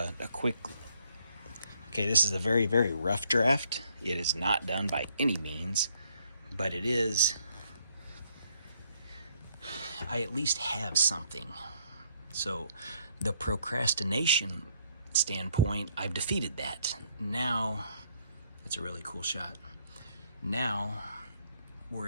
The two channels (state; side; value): inverted; both; correlation -0.69